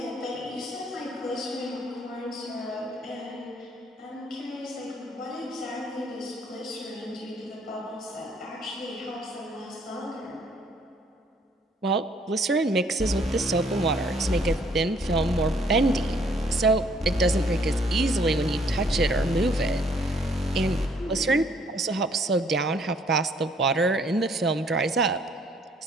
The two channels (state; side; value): normal; both; correlation 0.63